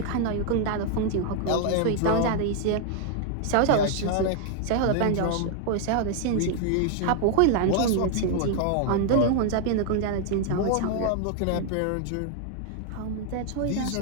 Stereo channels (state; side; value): different; both; correlation 0.00